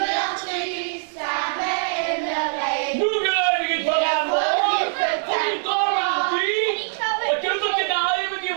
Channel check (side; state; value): left; silent; digital silence